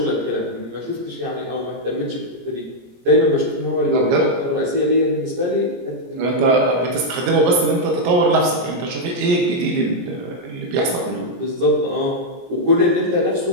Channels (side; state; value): left; late; 17 ms